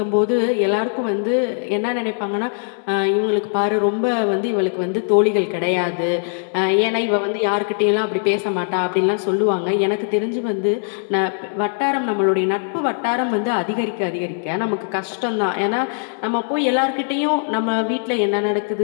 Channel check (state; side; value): silent; right; 62 dB below the other